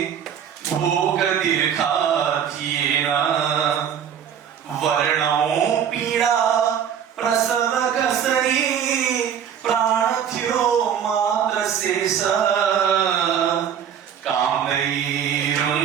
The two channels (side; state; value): left; quieter; 8.6 dB